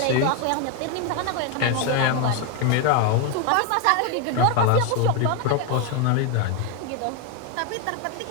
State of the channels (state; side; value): different; both; correlation 0.01